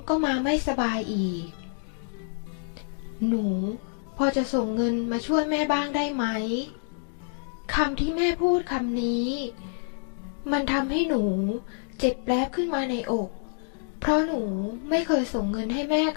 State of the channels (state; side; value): silent; right; 56 dB below the other